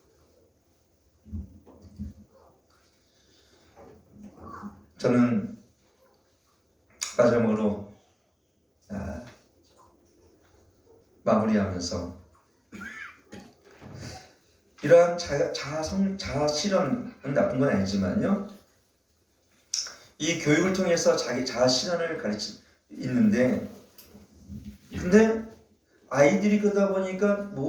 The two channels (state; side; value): identical; both; correlation 1.00